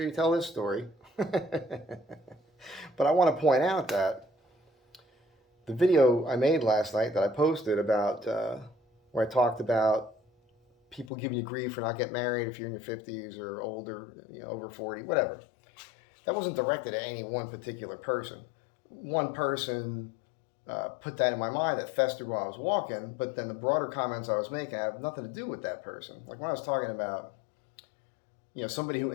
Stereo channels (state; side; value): drops out; right; at 11.1 s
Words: you tell this story." But I want to point out that the video I made last night that I posted about where I talked about people giving you grief for not getting married if you're in your 50s or older, over 40, whatever. That wasn't directed at any one particular person. One person put that in my mind that festered while I was walking, but then the broader comments I was making have nothing to do with that person. Like when I was talking about, somebody who